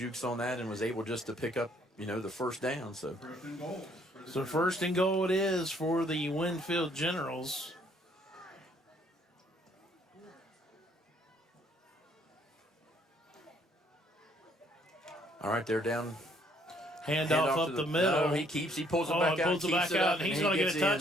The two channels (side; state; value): both; normal; correlation 0.65